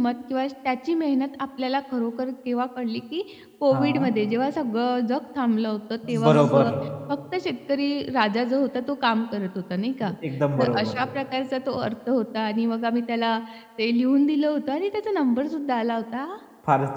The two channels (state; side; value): identical; both; correlation 1.00